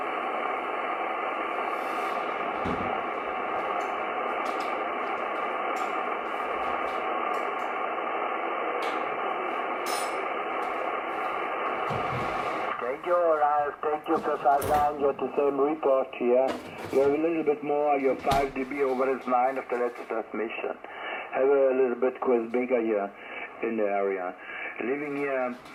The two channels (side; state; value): both; identical; correlation 1.00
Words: Thank you for 59, you're the same report here. You have a little bit more, you're 5 dB over his 9 of the latest transmission. Have a little bit quiz bigger here in the area. Living here